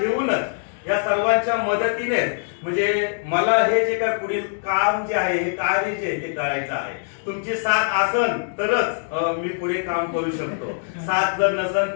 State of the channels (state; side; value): silent; right; 64 dB below the other